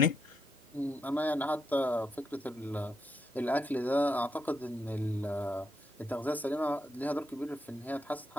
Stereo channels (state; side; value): normal; both; correlation 0.80